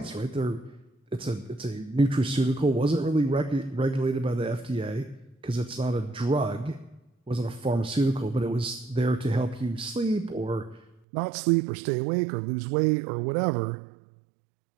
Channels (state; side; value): drops out; left; at 11.0 s